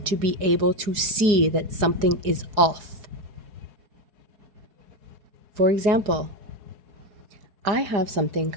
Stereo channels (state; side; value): late; left; 4.7 ms